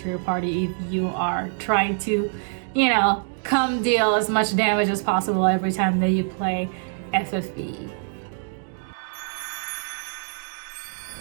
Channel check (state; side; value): silent; left; digital silence